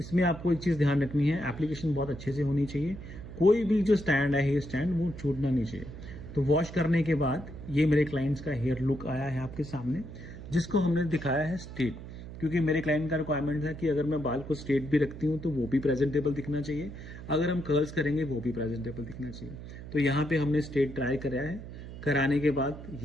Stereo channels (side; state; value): right; noise; hum, 12 dB below the sound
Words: आपको एक चीज़ ध्यान रखनी है, एप्लीकेशन बहुत अच्छे से होनी चाहिए। कोई भी जो स्टैंड है, हेयर स्टैंड, वो छूटना नहीं चाहिए। तो वॉश करने के बाद ये मेरे क्लाइंट्स का हेयर लुक आया है आपके सामने, जिसको हमने दिखाया है स्ट्रेट, क्योंकि मेरे क्लाइंट का रिक्वायरमेंट है कि अगर मैं बाल को स्ट्रेट भी रखती हूँ तो वो भी प्रेजेंटेबल दिखना चाहिए, अगर हम कर्ल्स करेंगे वो भी प्रेजेंटेबल दिखना चाहिए। तो यहाँ पे हमने स्ट्रेट ट्राई कराया है। कराने के बाद